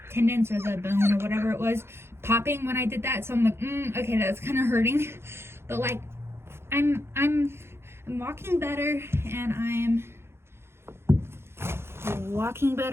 tendons or the bone or whatever it was popping when I did that. So I'm like, okay, that's kind of hurting. But like I'm walking better, and I'm walking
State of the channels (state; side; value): late; left; 0.12 ms